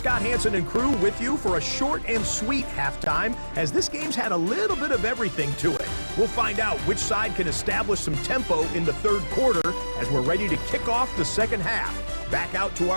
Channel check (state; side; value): inverted; both; correlation -1.00